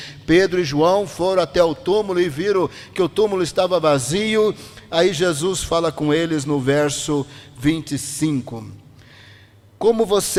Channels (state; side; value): identical; both; correlation 1.00